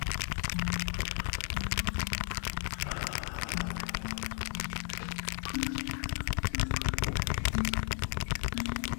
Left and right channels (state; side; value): silent; right; 55 dB below the other